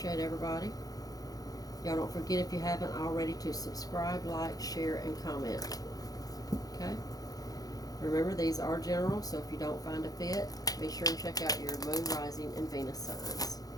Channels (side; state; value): right; late; 0.18 ms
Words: everybody. Y'all don't forget, if you haven't already, to subscribe, like, share, and comment. Okay? Remember, these are general, so if you don't find a fit, be sure and check out your moon, rising, and Venus signs.